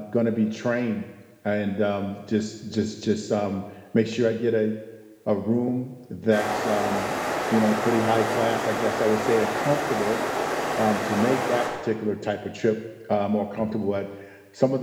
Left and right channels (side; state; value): both; identical; correlation 1.00